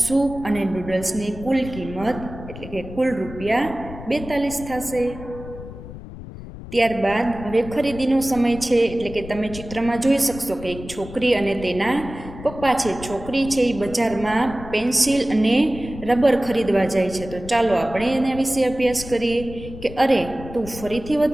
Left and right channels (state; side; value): noise; left; rumble, 13 dB below the sound